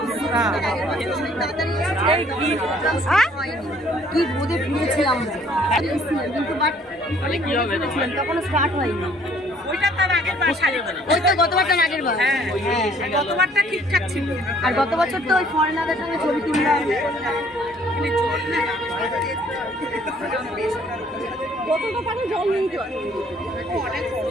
কি বোধে ফিরেছিলাম কিন্তু বাট তখন স্টার্ট হয়নি ওই তো গতবারটা আগের বার গতবারটা ঠিকঠাক ছিল আর গত বছর তো ওই ফরেনারদের সঙ্গে ছবি তুললাম জল নেই তো অনেক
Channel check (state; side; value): normal; both; correlation 0.60